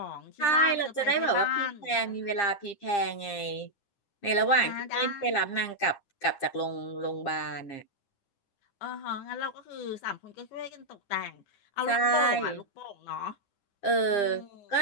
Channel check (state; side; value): late; right; 9.9 ms